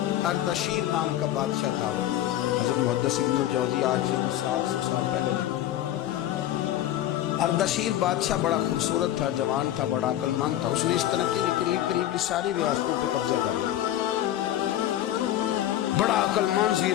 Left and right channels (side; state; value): right; quieter; 12.7 dB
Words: اردشیر نام کا بادشاہ تھا، حضرت محدث ابن الجوزی آج 700 سال پہلے لکھتے ہیں۔ اردشیر بادشاہ بڑا خوبصورت تھا، جوان تھا، بڑا عقل مند تھا، اس نے اس طرح کی قریب قریب کی ساری ریاستوں پہ قبضہ کر لیا، بڑا عقل مند